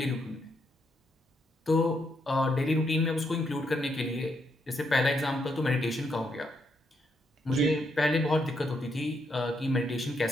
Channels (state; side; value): normal; both; correlation 0.77